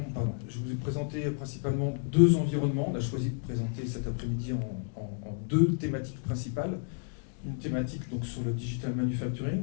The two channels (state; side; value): silent; right; 57 dB below the other